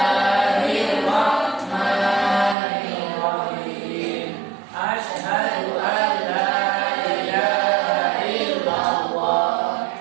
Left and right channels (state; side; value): drops out; left; at 2.6 s